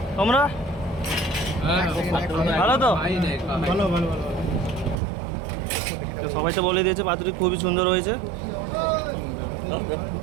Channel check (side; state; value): left; drops out; at 5.0 s